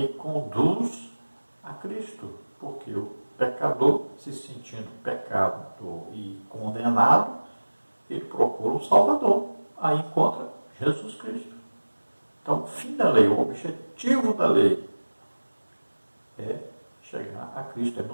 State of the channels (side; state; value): both; inverted; correlation -1.00